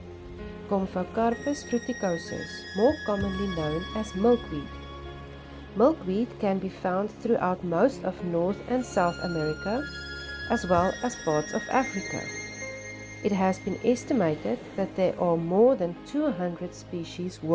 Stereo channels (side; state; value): both; identical; correlation 1.00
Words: Gomphocarpus fruticosus, more commonly known as milkweed. Milkweed can be found throughout most of North and South America, as well as parts of Africa. It has been estimated that there are more than 200 species